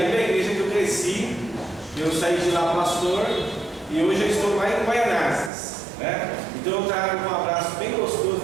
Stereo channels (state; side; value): drops out; left; at 5.5 s